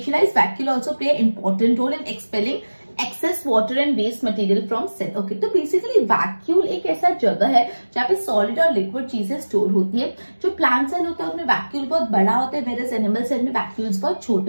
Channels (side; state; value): both; inverted; correlation -1.00